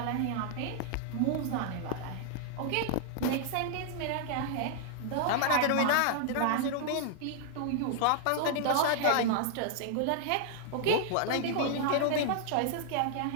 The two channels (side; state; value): both; different; correlation -0.01